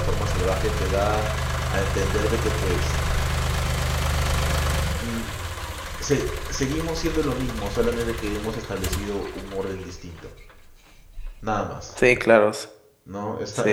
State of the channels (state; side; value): identical; both; correlation 1.00